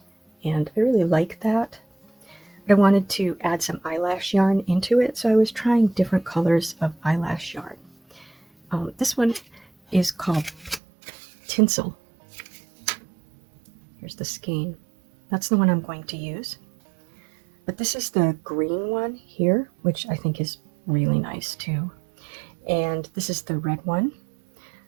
and I really like that. I wanted to add some eyelash yarn into it, so I was trying different colors of eyelash yarn. This one is called Tinsel. Here's the skein. That's the one I'm going to use. But this is the green one here, which I think is really nice too. And this is the red one.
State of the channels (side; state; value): left; drops out; at 10.8 s